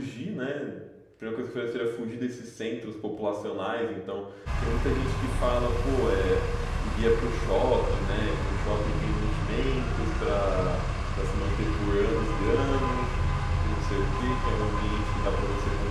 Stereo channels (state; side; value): identical; both; correlation 1.00